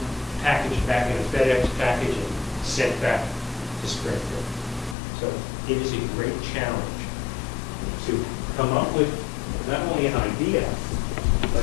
packaged back in a FedEx package, and sent back to Springfield. So it is a great challenge to come up with not only an idea,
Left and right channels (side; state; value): right; drops out; at 5.0 s